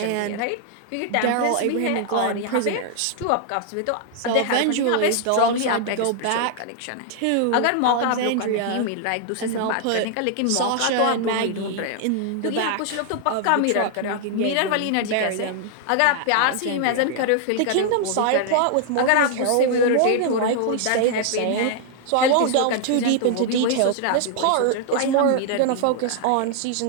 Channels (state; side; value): different; both; correlation 0.00